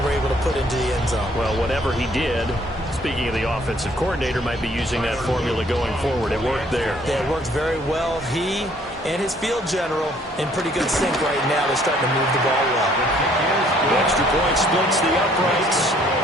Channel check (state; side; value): normal; both; correlation 0.61